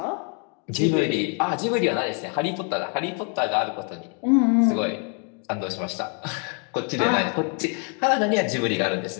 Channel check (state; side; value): quieter; right; 39.3 dB